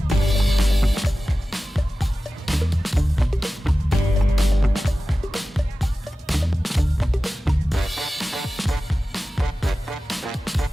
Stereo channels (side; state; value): both; normal; correlation 0.95